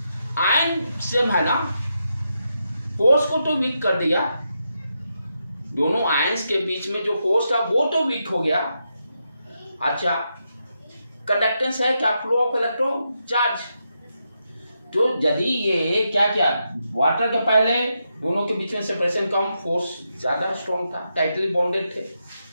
आयन सेम है ना, फोर्स को तो वीक कर दिया, दोनों आयंस के बीच में जो फोर्स था वो तो वीक हो गया। अच्छा, कंडक्टेंस है क्या, फ्लो ऑफ इलेक्ट्रॉन चार्ज। तो यदि ये क्या वाटर के पहले दोनों के बीच में सेपरेशन कम, फोर्स ज्यादा स्ट्रॉन्ग था, टाइटली बॉन्डेड थे,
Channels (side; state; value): both; inverted; correlation -0.84